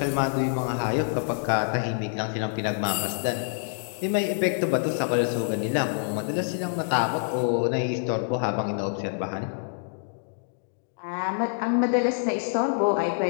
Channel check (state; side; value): silent; right; digital silence